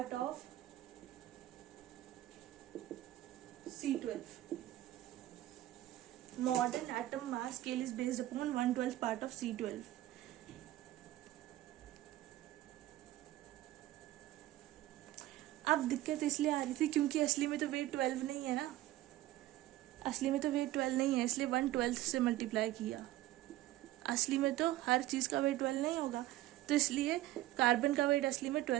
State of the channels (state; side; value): quieter; left; 15.2 dB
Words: of C12. Modern atom mass scale is based upon 1/12 part of C12. अब दिक्कत इसलिए आ रही थी क्योंकि असली में तो वेट 12 नहीं है ना, असली में तो वेट 12 नहीं है, इसलिए 1/12 से मल्टीप्लाई किया। असली में तो हर चीज़ का वेट 12 नहीं होगा, तो इसलिए कार्बन का वेट असली में